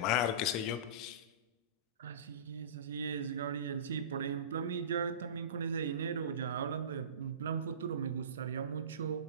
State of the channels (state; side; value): inverted; both; correlation -0.31